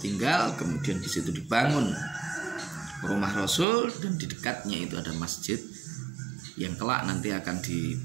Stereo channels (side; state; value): left; drops out; at 3.7 s